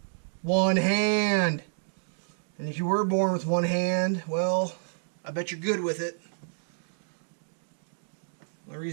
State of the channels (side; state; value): left; silent; digital silence